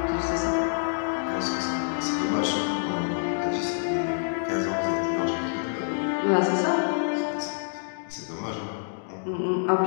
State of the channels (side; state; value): right; silent; digital silence